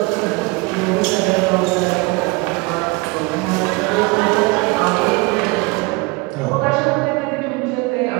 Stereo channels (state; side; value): quieter; left; 25.6 dB